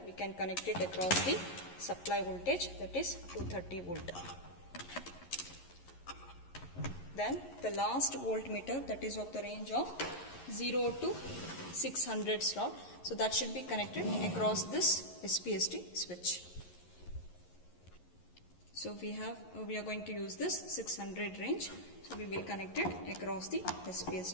we can connect it across the supply voltage, that is 230 volt. Then the last voltmeter, that is of the range of 0 to 600 slot. So that should be connected across this SPST switch. So we are going to use this 600 range. So we will connect it across the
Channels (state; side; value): late; right; 11 ms